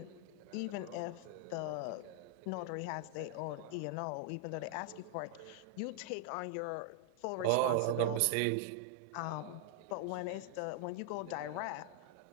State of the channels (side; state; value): both; different; correlation 0.00